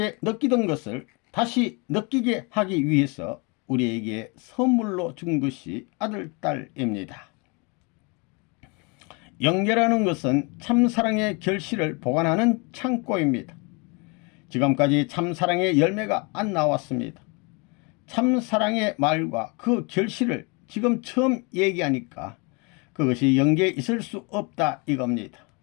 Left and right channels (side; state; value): right; quieter; 30.9 dB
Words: 느끼던 것을 다시 느끼게 하기 위해서 우리에게 선물로 준 것이 아들, 딸입니다. 연계라는 것은 참사랑의 결실을 보관하는 창고입니다. 지금까지 참사랑의 열매가 안 나왔습니다. 참사랑의 말과 그 결실을 지금 처음 얘기하니까 그것이 연계에 있을 수 없다 이겁니다.